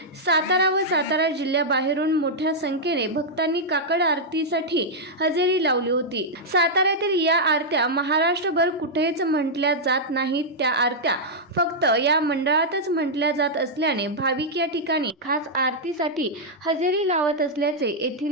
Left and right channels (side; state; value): both; normal; correlation -0.06